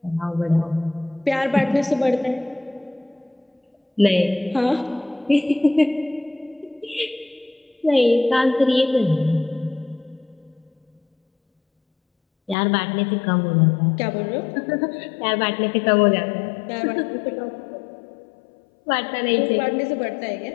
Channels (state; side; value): drops out; right; at 12.6 s